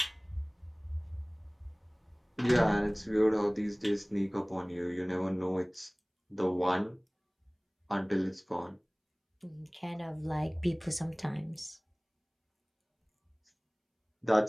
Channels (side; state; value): both; identical; correlation 1.00